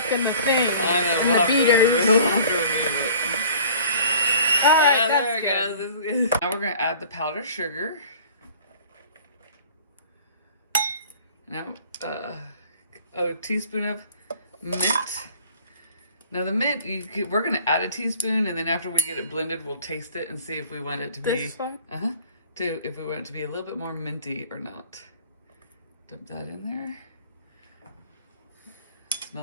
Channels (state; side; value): inverted; both; correlation -0.48